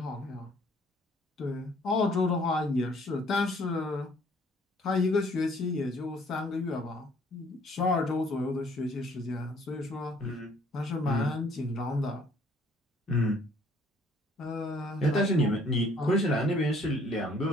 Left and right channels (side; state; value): both; normal; correlation 0.60